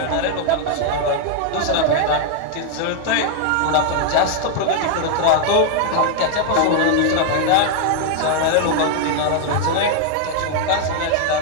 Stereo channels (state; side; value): different; both; correlation 0.00